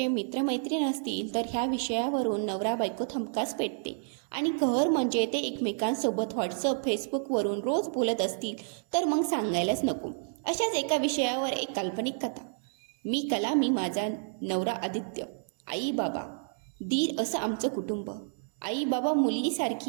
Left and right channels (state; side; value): silent; left; digital silence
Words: मित्रमैत्रीण असतील तर ह्या विषयावरून नवरा बायको हमखास पेटते. आणि कहर म्हणजे ते एकमेकांसोबत व्हॉट्सअप फेसबुकवरून रोज बोलत असतील तर मग सांगायलाच नको. अशाच एका विषयावर एक काल्पनिक कथा. मी कला, मी माझा नवरा आदित्य, आई बाबा दीर असं आमचं कुटुंब. आई बाबा